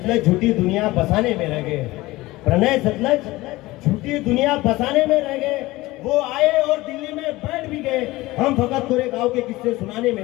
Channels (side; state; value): right; quieter; 19.3 dB